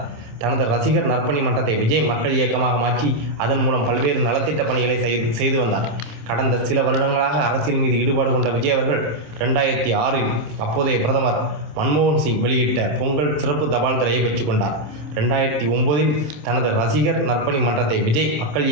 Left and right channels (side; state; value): left; late; 26 ms